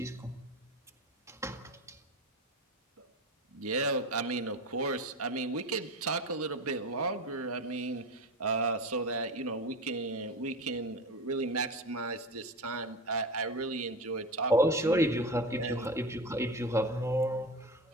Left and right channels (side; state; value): both; normal; correlation 0.26